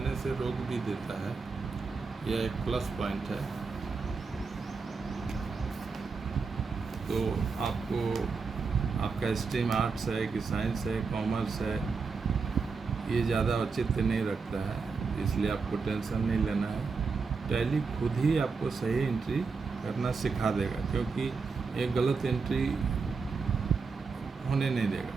से रोक भी देता है, यह एक प्लस पॉइंट है। तो आपको आपका स्ट्रीम आर्ट्स है कि साइंस है, कॉमर्स है, ये ज़्यादा औचित्य नहीं रखता है, इसलिए आपको टेंशन नहीं लेना है। टैली खुद ही आपको सही एंट्री करना सिखा देगा, क्योंकि एक गलत एंट्री होने नहीं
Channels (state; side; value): quieter; left; 4.8 dB